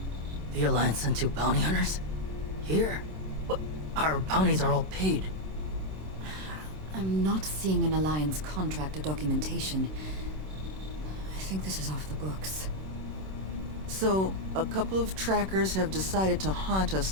The Alliance sent 2 bounty hunters? Here? But our bounties are all paid. I'm not seeing an Alliance contract or documentation. I think this is off the books. So, a couple of trackers have decided to haunt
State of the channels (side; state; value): left; late; 26 ms